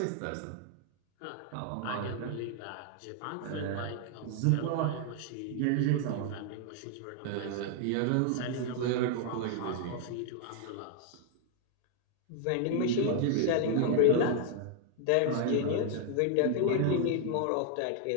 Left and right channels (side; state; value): both; different; correlation 0.00